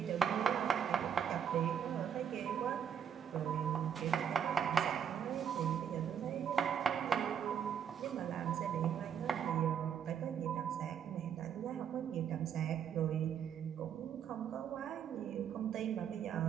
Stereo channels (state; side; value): quieter; left; 8.2 dB